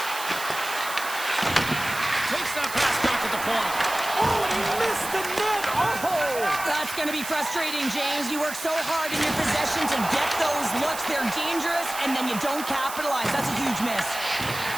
Takes that pass back at the point. Oh, he missed the net. Oh! That's going to be frustrating, James. You work so hard in your possession to get those looks. They're dangerous, and then you don't capitalize. That's a huge miss.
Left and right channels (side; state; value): right; noise; hiss, 9 dB below the sound